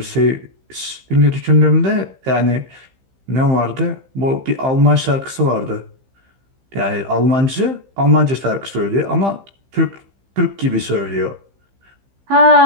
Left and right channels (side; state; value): left; late; 15 ms